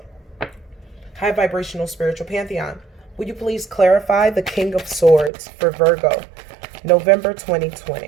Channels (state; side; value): drops out; left; at 5.3 s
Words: high vibrational spiritual pantheon, Will you please clarify the King of Swords for Virgo, November